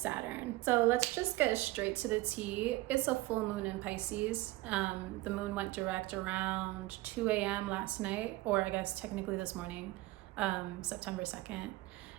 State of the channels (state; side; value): quieter; left; 18.9 dB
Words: So let's just get straight to the tea. It's a full moon in Pisces. The moon went direct around 2 a.m. last night, or I guess technically this morning, September 2nd.